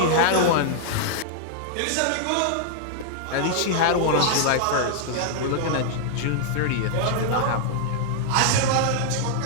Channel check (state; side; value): different; both; correlation -0.01